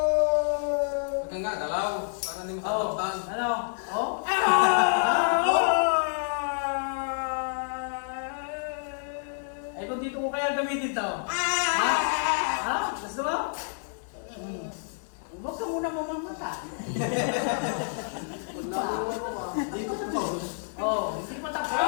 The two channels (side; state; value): right; silent; digital silence